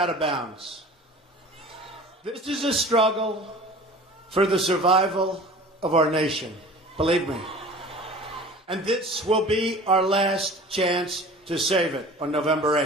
of bounds. This is a struggle for the survival of our nation, believe me. And this will be our last chance to save it on November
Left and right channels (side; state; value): both; normal; correlation 0.42